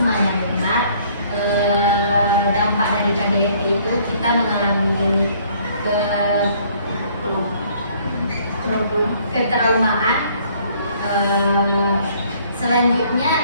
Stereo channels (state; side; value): inverted; both; correlation -0.60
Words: benar. Dampak dari KDRT itu kita mengalami ketraumaan. Selanjutnya